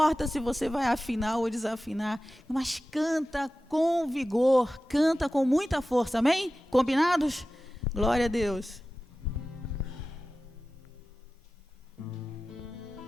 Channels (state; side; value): normal; both; correlation 0.95